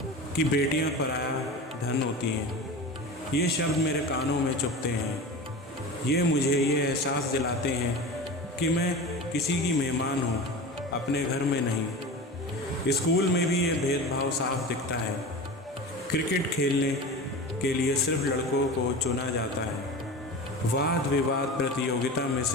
कि बेटियां पराया धन होती हैं। ये शब्द मेरे कानों में चुभते हैं। ये मुझे ये एहसास दिलाते हैं कि मैं किसी की मेहमान हूँ, अपने घर में नहीं। स्कूल में भी ये भेदभाव साफ दिखता है। क्रिकेट खेलने के लिए सिर्फ लड़कों को चुना जाता है। वाद विवाद प्रतियोगिता में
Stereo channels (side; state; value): both; normal; correlation 0.30